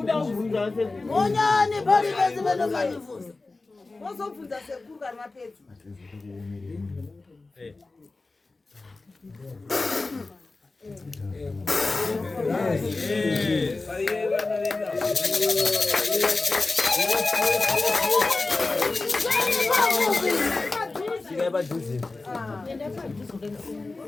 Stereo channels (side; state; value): right; quieter; 3.5 dB